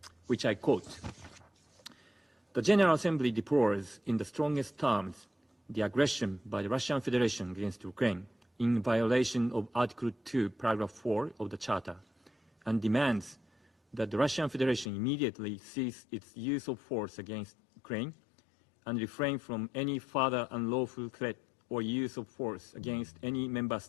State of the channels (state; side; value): drops out; right; at 14.9 s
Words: which I quote: "The General Assembly deplores in the strongest terms the aggression by the Russian Federation against Ukraine in violation of Article 2, Paragraph 4 of the Charter, and demands that the Russian Federation immediately cease its use of force against Ukraine and refrain from any further unlawful threat or use of force against any member